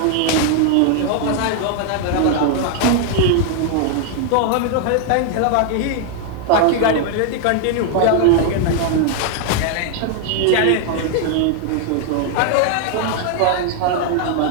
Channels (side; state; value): both; different; correlation 0.00